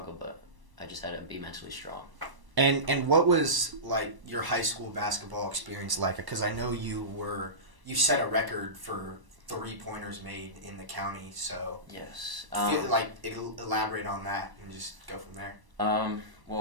but I just had to be mentally strong. And what was like your high school basketball experience like? Because I know you set a record for 3-pointers made in the county. So yes, elaborate on that and just go from there.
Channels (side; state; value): left; late; 1.0 ms